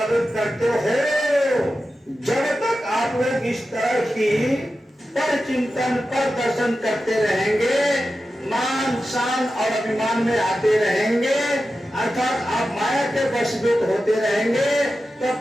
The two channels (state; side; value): normal; both; correlation 0.92